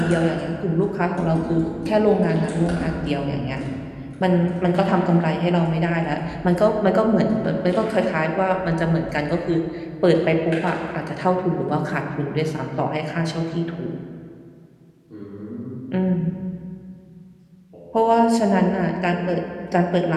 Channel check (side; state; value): both; identical; correlation 1.00